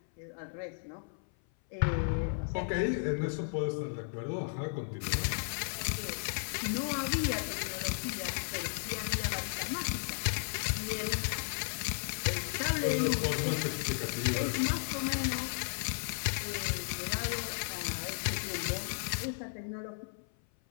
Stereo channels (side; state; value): right; silent; 55 dB below the other